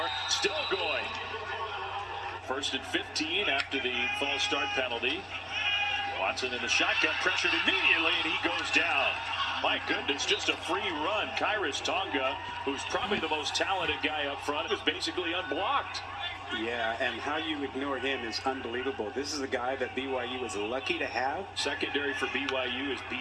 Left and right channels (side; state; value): both; identical; correlation 1.00